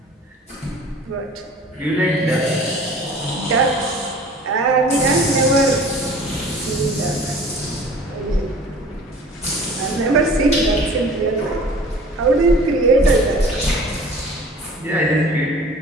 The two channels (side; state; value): both; normal; correlation 0.45